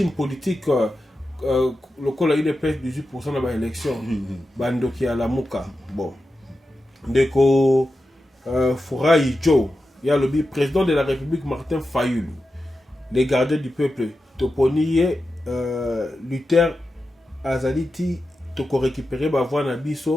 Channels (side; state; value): both; normal; correlation 0.91